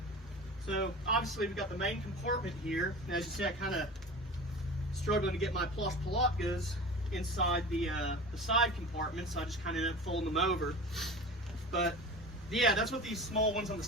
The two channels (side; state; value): both; normal; correlation 0.35